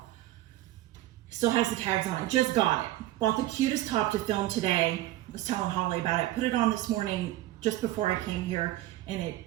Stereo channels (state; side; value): quieter; left; 15.5 dB